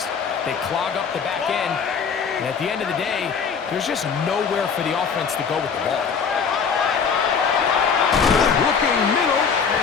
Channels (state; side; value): quieter; right; 6.2 dB